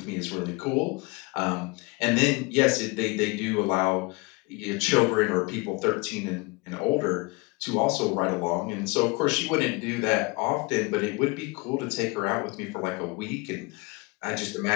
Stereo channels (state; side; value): quieter; right; 27.1 dB